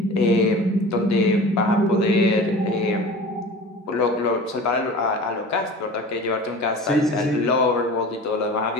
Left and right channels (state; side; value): normal; both; correlation 0.38